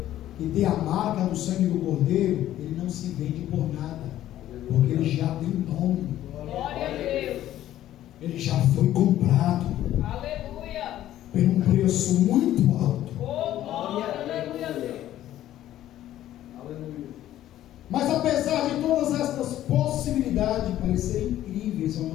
que tem a marca do sangue do Cordeiro, ele não se vende por nada, porque ele já tem nome. Glória a Deus. Ele já foi comprado. Aleluia. Por um preço muito alto. Oh, glória, aleluia a Deus. Aleluia. Mas apesar de todas estas possibilidades parecerem incríveis aos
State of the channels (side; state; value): right; quieter; 13.0 dB